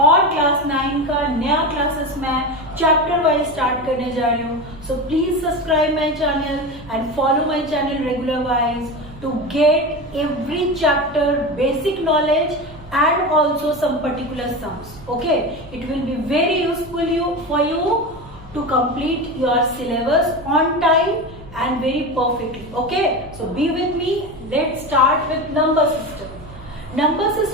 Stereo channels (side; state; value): both; normal; correlation 0.23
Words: क्लास 9 का नया क्लासेस मैं चैप्टर वाइज स्टार्ट करने जा रही हूँ। So please subscribe my channel and follow my channel regular wise to get every chapter basic knowledge and also some particular sums. Okay, it will be very useful for you to complete your syllabus on time and very perfectly. Okay, so be with me. Let's start with number system. Number